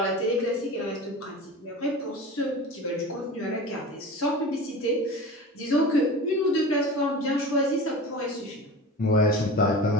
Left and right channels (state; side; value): normal; both; correlation 0.33